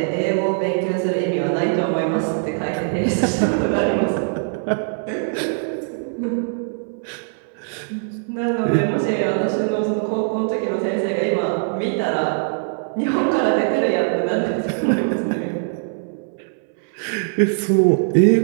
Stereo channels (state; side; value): silent; left; 60 dB below the other